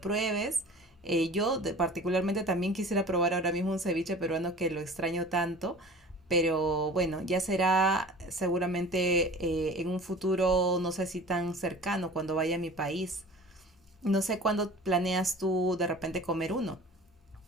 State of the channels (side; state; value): both; normal; correlation 0.42